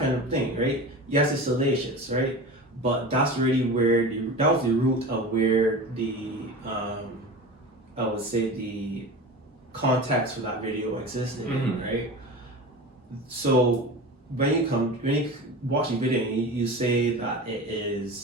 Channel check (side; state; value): both; normal; correlation 0.31